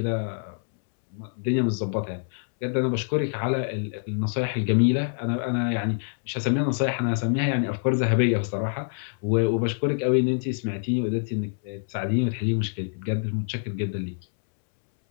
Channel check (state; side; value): silent; right; 61 dB below the other